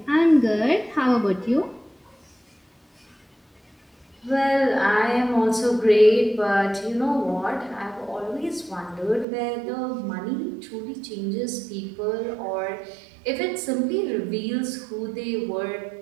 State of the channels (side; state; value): left; drops out; at 9.2 s